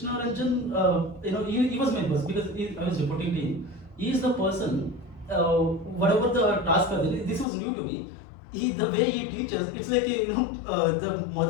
Ranjan, he was my boss, because I was reporting to him. He is the person. Whatever the task are there, this was new to me. The way he teaches, it's like the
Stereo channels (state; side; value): drops out; right; at 7.5 s